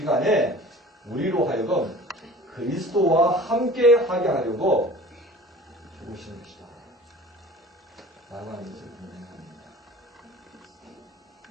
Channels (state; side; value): normal; both; correlation 0.43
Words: 간에 우리로 하여금 그리스도와 함께 하게 하려고 죽으신 것이다 라고 하는 것을 분명합니다.